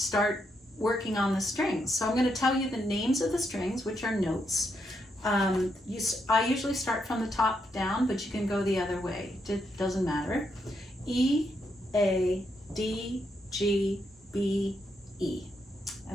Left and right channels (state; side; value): normal; both; correlation 0.79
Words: working on the strings. So I'm going to tell you the names of the strings, which are notes. I usually start from the top down, but you can go the other way. It doesn't matter. E, A, D, G, B, E.